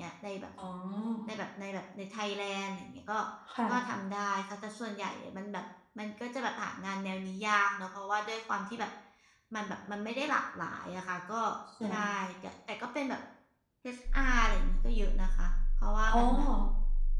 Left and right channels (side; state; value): both; identical; correlation 1.00